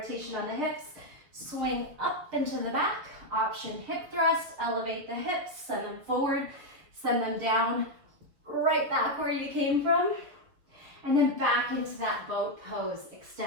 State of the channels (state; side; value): late; left; 6.4 ms